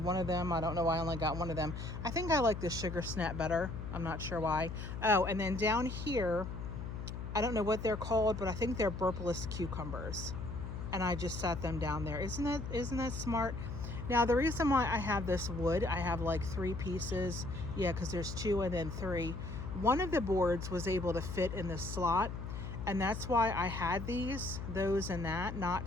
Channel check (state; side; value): noise; left; hum, 6 dB below the sound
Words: of them. I don't know why I only got one of them. I think I like the sugar snap better. I'm not sure why. Oh, and then down here, I don't know what they're called, but I think they're burpless cucumbers. And I just set them down there. Isn't that smart? Now, the reason why I have this wood, I have like 3 pieces. Yeah, because there's 2 and then 3. One of the boards was able to fit in the slot. And that's why I had those and that, not